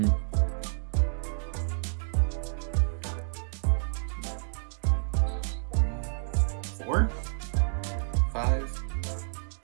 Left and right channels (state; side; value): silent; left; digital silence